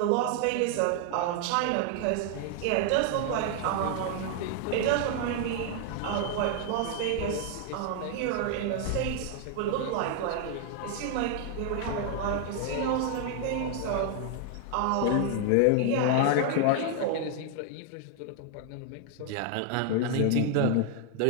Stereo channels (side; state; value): both; different; correlation 0.00